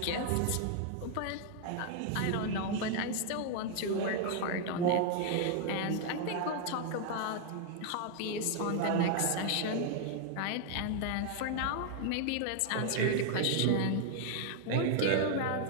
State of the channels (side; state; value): both; different; correlation 0.00